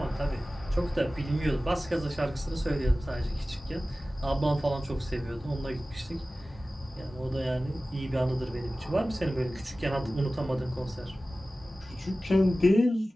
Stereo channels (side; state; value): both; normal; correlation 0.96